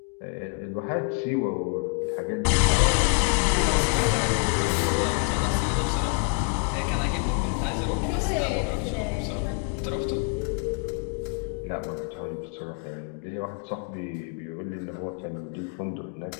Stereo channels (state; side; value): quieter; right; 36.4 dB